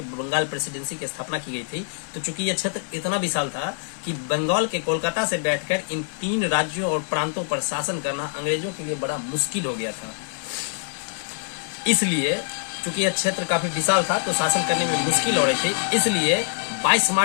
बंगाल प्रेसिडेंसी की स्थापना की गई थी, तो चूंकि यह क्षेत्र इतना विशाल था कि बंगाल के कोलकाता से बैठकर इन 3 राज्यों और प्रांतों पर शासन करना अंग्रेजों के लिए बड़ा मुश्किल हो गया था। इसलिए चूंकि यह क्षेत्र काफी विशाल था तो शासन करने में मुश्किल हो रही थी, इसलिए 22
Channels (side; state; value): right; silent; digital silence